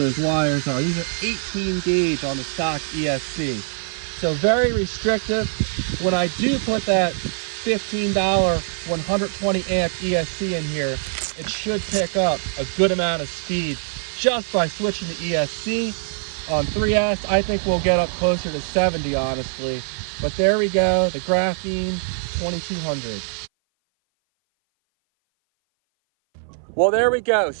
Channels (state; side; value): silent; left; 57 dB below the other